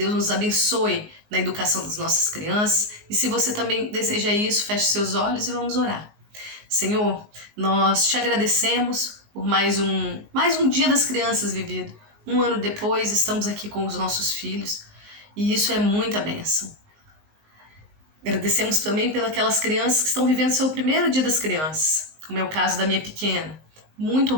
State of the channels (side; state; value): left; late; 19 ms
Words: nos abençoe na educação das nossas crianças. E se você também deseja isso, feche seus olhos e vamos orar. Senhor, nós te agradecemos por mais um dia das crianças vivido. 1 ano depois, estamos aqui com os nossos filhos e isso é muita bênção. Agradecemos também pelas crianças que estão vivendo seu primeiro dia das crianças, como é o caso da minha pequena. Muito